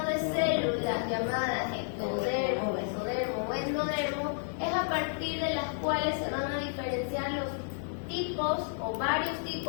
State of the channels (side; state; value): right; silent; 57 dB below the other